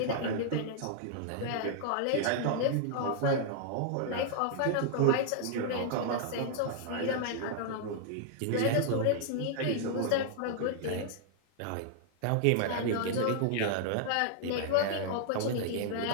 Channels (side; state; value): both; different; correlation -0.01